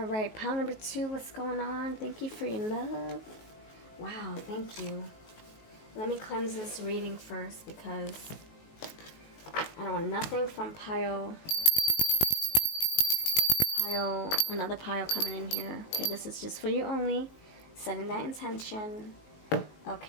right, pile number 2, what's going on? Thank you for your love. Wow, thank you. Let me cleanse this reading first because I don't want nothing from another pile coming in here. Okay, this is just for you only. Setting that intention.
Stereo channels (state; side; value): late; right; 19 ms